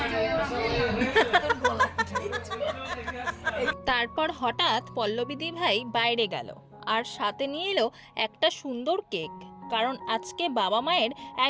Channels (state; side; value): identical; both; correlation 1.00